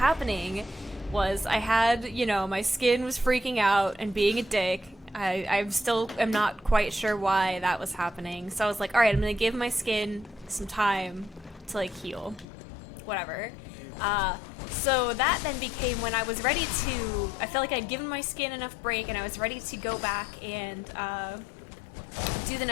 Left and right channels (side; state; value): right; drops out; at 12.5 s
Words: was I had, my skin was freaking out and being a dick. I still am not quite sure why that was happening. So I was like, all right, I'm going to give my skin some time to, heal. Whatever. So that then became when I was ready to, I felt like I'd given my skin enough break and I was ready to go back and do the